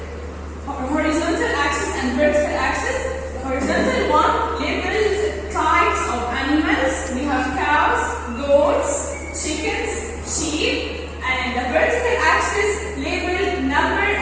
horizontal axis and vertical axis. The horizontal one labels types of animals. We have cows, goats, chickens, sheep, and the vertical axis labeled number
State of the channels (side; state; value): both; identical; correlation 1.00